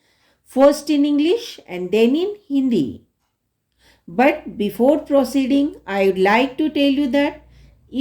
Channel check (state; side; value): identical; both; correlation 1.00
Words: first in English and then in Hindi. But before proceeding, I would like to tell you that